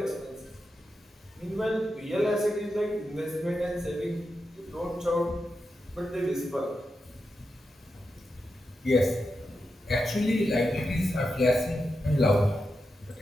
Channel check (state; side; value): normal; both; correlation 0.88